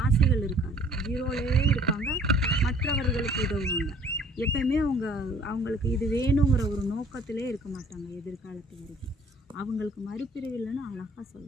ஆசைகள் இருக்காது, ஜீரோலேயே இருப்பாங்க. மற்றவர்களுக்கு உதவுவாங்க. எப்பயுமே அவங்களுக்கு இது வேணுங்கிற ஒரு நோக்கத்திலே இருக்க மாட்டாங்க எதிர்காலத்து வரைக்கும். அவங்களுக்கு மறுபிறவில்லைன்னு அழகாக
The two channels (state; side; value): normal; both; correlation 0.55